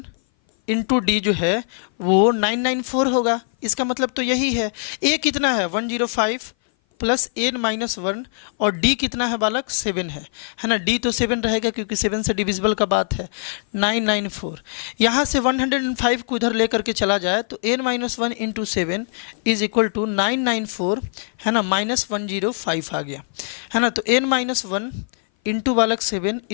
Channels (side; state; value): right; silent; 58 dB below the other